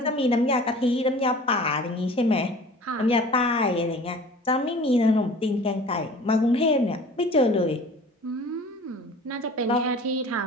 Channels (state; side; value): normal; both; correlation 0.44